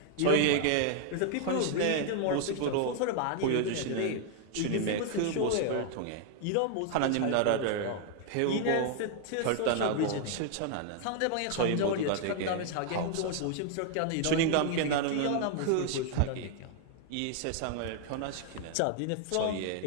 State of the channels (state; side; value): different; both; correlation 0.00